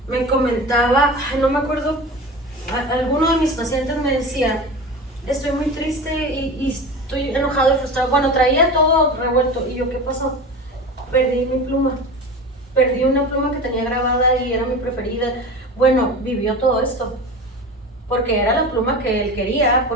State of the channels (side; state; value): both; normal; correlation 0.31